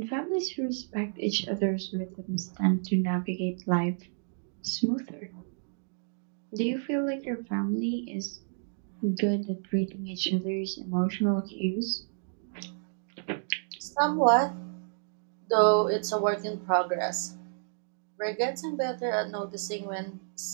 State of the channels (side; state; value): left; silent; digital silence